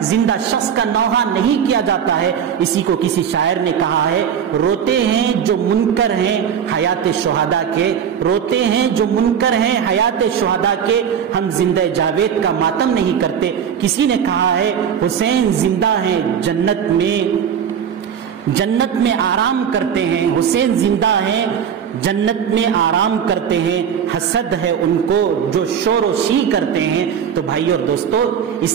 زندہ شخص کا نوحہ نہیں کیا جاتا ہے۔ اسی کو کسی شاعر نے کہا ہے، روتے ہیں جو منکر ہیں حیات شہداء کے، روتے ہیں جو منکر ہیں حیات شہداء کے، ہم زندہ جاوید کا ماتم نہیں کرتے۔ کسی نے کہا ہے حسین زندہ ہیں جنت میں آرام کرتے ہیں، حسین زندہ ہیں جنت میں آرام کرتے ہیں، حسد ہے ان کو جو شور و شی کرتے ہیں۔ تو بھائی اور دوستو،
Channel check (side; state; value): left; quieter; 8.1 dB